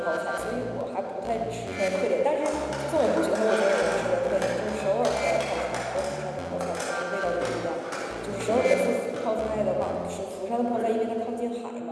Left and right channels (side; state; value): both; identical; correlation 1.00